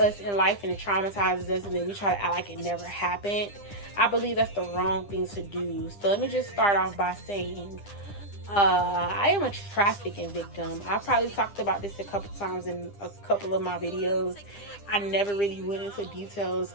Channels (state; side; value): late; right; 9.9 ms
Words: us in life and it traumatizes us and then we try to act like it never happened. I believe that's the wrong thing to do. So let me just start off by saying I am a trafficking victim. I probably talked about this a couple times in a couple of my videos. I never really went into details,